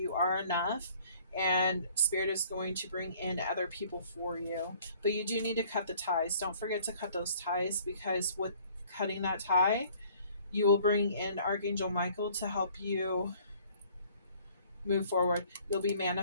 are enough and spirit is going to bring in other people for you. But you do need to cut the ties. Don't forget to cut those ties because with cutting that tie, you will bring in Archangel Michael to help you move forward. You'll be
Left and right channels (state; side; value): inverted; both; correlation -0.56